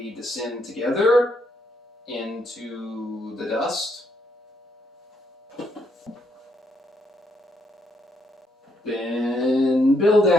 descend together into the dust? Then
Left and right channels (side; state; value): both; normal; correlation 0.75